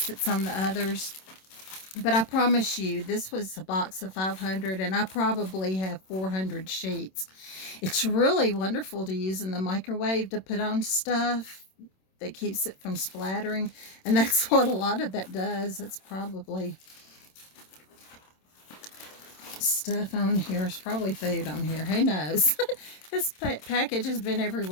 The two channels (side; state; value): right; late; 27 ms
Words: that's on the others. But I promise you, this was a box of 500, and I probably have 400 sheets. It's really wonderful to use in the microwave to put on stuff that keeps it from splattering. And that's what a lot of that does. It's probably stuff on here. It's probably food on here. Who knows? This package has been